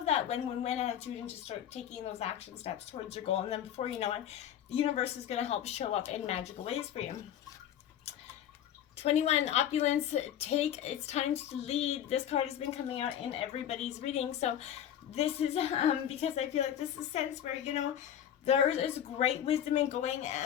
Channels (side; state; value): right; quieter; 10.2 dB